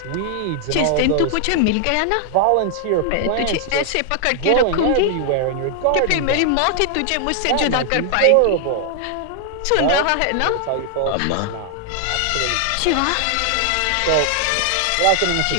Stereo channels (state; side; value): different; both; correlation 0.00